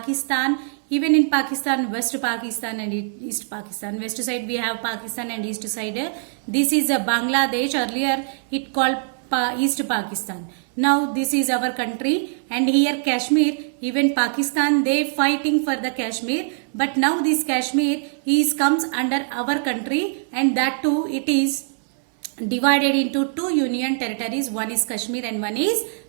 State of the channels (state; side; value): silent; left; 64 dB below the other